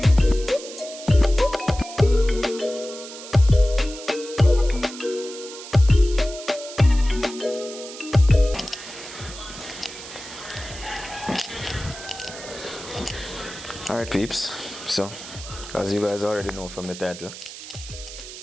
Alright peeps, so as you guys already know from the title,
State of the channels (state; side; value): noise; right; hiss, 13 dB below the sound